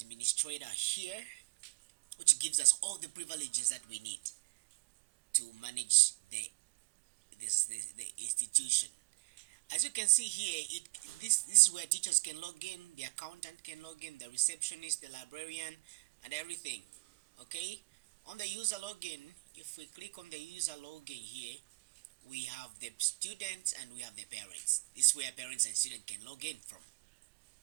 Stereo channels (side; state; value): left; quieter; 26.0 dB